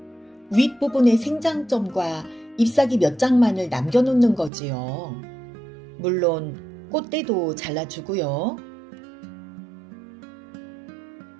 윗부분의 생장점과 잎사귀 몇 장만을 남겨놓는 거지요. 물론 꽃대도 잘라주고요.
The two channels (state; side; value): drops out; left; at 4.5 s